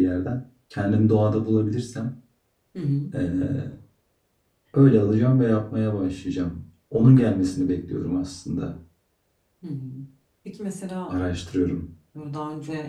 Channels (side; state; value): both; identical; correlation 1.00